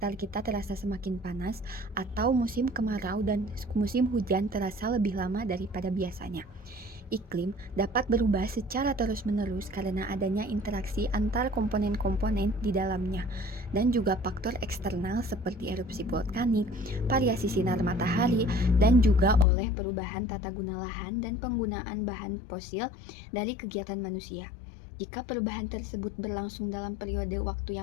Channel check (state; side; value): drops out; right; at 19.5 s